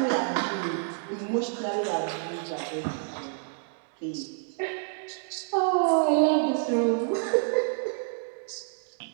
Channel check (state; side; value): silent; left; digital silence